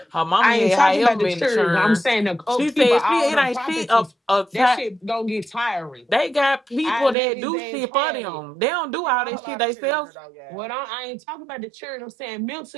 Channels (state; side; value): drops out; left; at 7.2 s